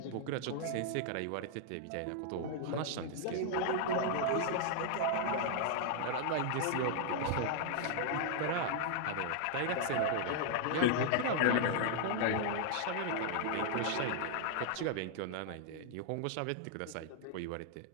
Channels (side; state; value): both; different; correlation 0.00